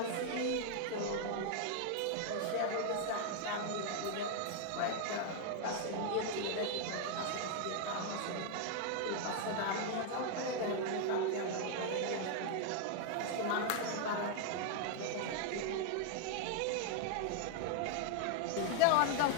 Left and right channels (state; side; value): different; both; correlation 0.00